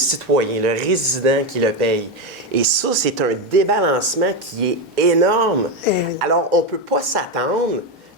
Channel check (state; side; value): normal; both; correlation 0.11